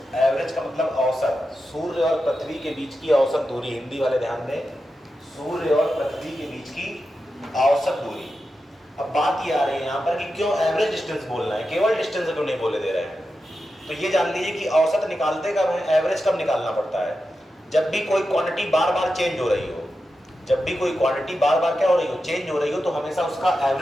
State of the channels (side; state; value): both; normal; correlation 0.90